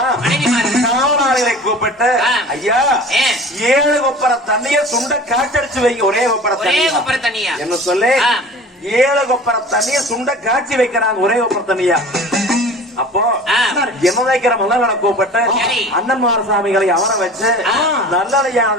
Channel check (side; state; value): both; normal; correlation 0.40